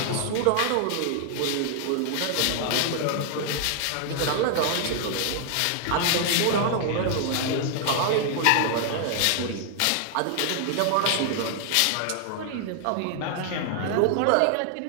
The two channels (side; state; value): both; different; correlation 0.00